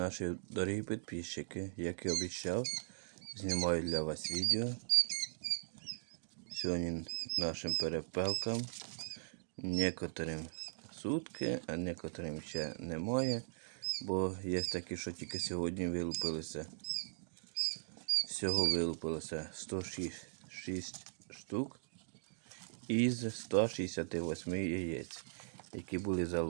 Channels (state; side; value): silent; left; digital silence